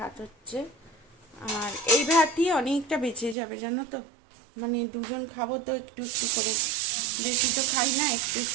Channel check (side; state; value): left; drops out; at 3.4 s